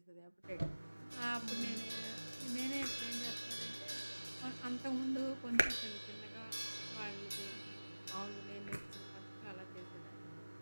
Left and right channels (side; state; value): both; inverted; correlation -1.00